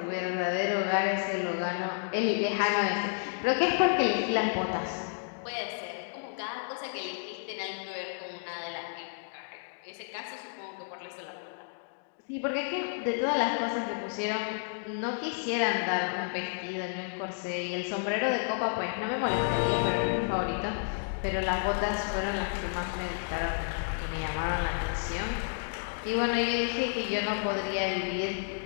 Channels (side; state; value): right; silent; digital silence